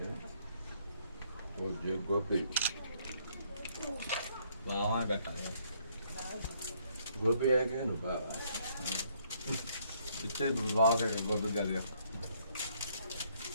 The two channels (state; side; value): inverted; both; correlation -0.68